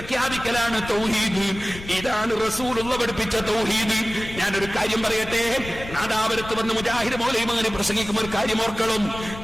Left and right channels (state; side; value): noise; left; rumble, 13 dB below the sound